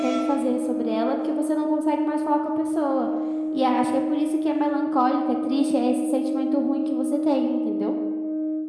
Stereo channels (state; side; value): identical; both; correlation 1.00